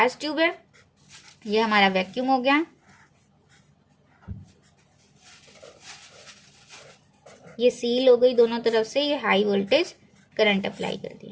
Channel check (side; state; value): both; identical; correlation 1.00